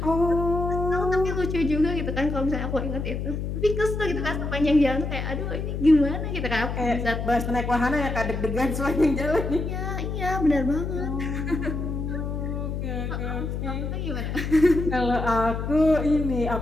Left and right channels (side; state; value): left; noise; hum, 3 dB below the sound